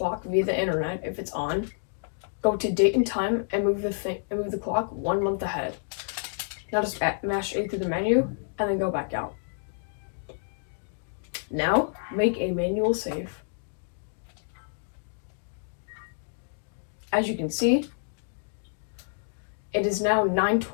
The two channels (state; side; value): silent; right; digital silence